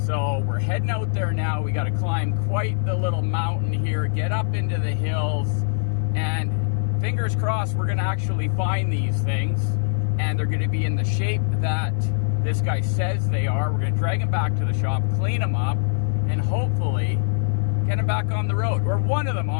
So we're heading out there now. We got to climb quite the little mountain here, get up into the hills, and fingers crossed we're going to actually find these things and they're going to be in the shape that this guy says they are. We're going to drag them back to the shop, clean them up, and hopefully get them back on the road, or one of them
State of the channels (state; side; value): silent; right; digital silence